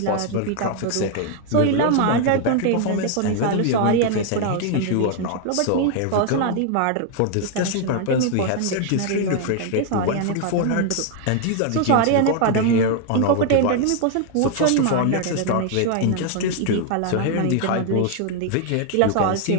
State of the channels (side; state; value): both; different; correlation 0.00